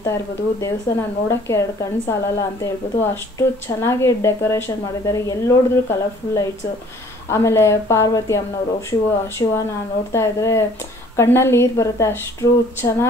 ಇರ್ಬೋದು, ದೇವಸ್ಥಾನ ನೋಡೋಕ್ಕೆ 2 ಕಣ್ಣು ಸಾಲಲ್ಲ ಅಂತ ಹೇಳ್ಬೋದು. ಅಷ್ಟು ಚೆನ್ನಾಗಿ ಡೆಕೋರೇಷನ್ ಮಾಡಿದ್ದಾರೆ. ಎಲ್ಲಿ ನೋಡಿದ್ರು ಕಲರ್ಫುಲ್ ಲೈಟ್ಸು. ಆಮೇಲೆ ಪಾರ್ವತಿ ಅಮ್ಮನವರು ಶಿವನ ನೋಡ್ತಾ ಇದ್ರೆ ಕಣ್ಣಲ್ಲಿ ನೀರು ಬರುತ್ತೆ. ಅಷ್ಟು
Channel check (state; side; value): normal; both; correlation 0.55